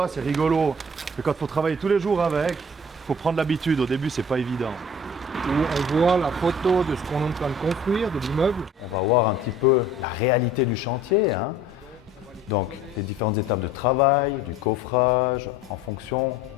c'est rigolo. Mais quand il faut travailler tous les jours avec, il faut prendre l'habitude. Au début, c'est pas évident. Où on voit la photo de ce qu'on est en train de construire, de l'immeuble. On va voir un petit peu la réalité du chantier, hein. Donc les différentes étapes de travail, du coffrage, en fonction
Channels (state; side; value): normal; both; correlation 0.48